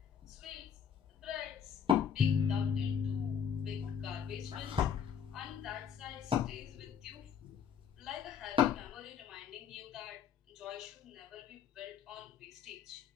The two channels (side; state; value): right; quieter; 7.6 dB